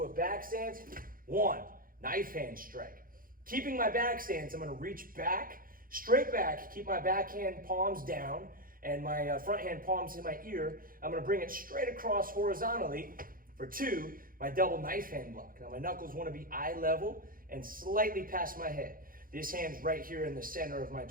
a back stance. 1, knife hand strike. Keeping my back stance, I'm going to reach back, straight back, keep my backhand palms down, and my front hand palms in my ear. I'm going to bring it straight across horizontally for 2, my double knife hand block. Now my knuckles want to be eye level and slightly past my head. This hand's right here in the center of my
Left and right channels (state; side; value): late; left; 0.41 ms